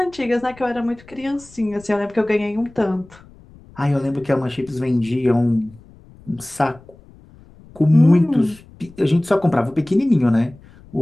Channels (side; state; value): left; noise; rumble, 24 dB below the sound